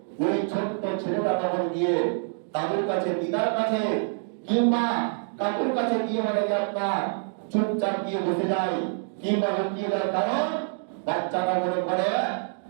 ওই ছোট্ট ছেলেটা তখন গিয়ে তাদের কাছে, দিদার কাছে কিংবা কাকুর কাছে গিয়ে আপনার চুপচাপ গিয়ে বসে যায় কিংবা লুকিয়ে যায়। কারণ বাচ্চাটা মনে করে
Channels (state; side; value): silent; left; digital silence